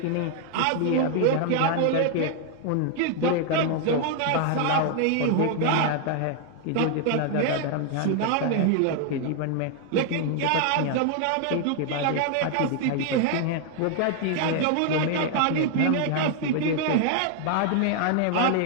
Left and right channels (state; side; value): different; both; correlation 0.00